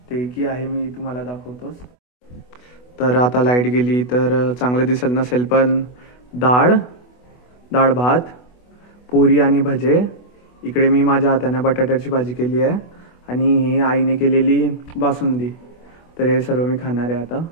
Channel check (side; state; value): right; late; 24 ms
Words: ते की आहे मी तुम्हाला दाखवतोच. तर आता लाईट गेली तर चांगलं दिसत नसेल, पण डाळ भात, पुरी आणि भजे. इकडे मी माझ्या हाताने बटाट्याची भाजी केली आहे आणि ही आईने केलेली बासुंदी. तर हे सर्व मी खाणार आहे आता.